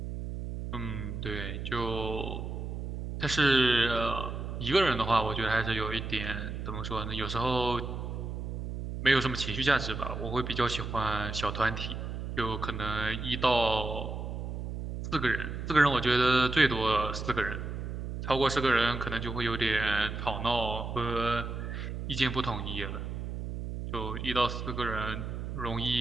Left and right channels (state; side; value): noise; right; hum, 5 dB below the sound